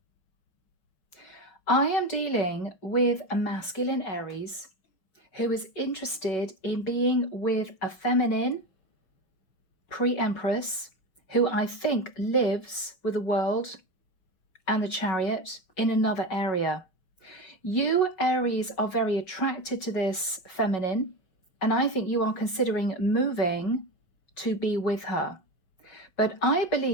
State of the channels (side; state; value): right; late; 5.4 ms